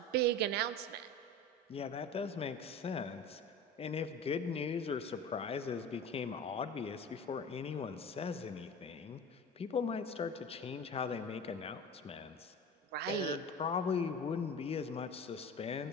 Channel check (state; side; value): normal; both; correlation 0.34